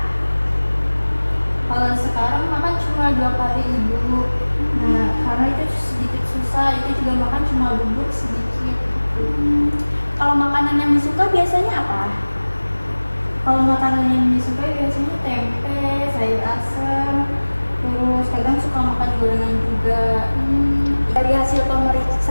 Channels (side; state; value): both; inverted; correlation -1.00